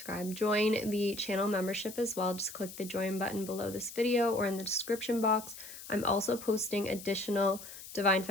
channel membership as well. Just click the join button below this video or in the description box. I'm also posting additional Divine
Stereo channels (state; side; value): noise; left; hiss, 13 dB below the sound